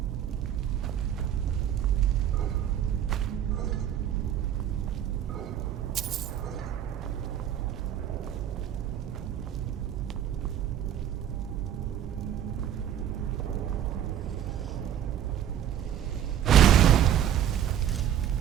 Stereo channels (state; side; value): quieter; left; 10.3 dB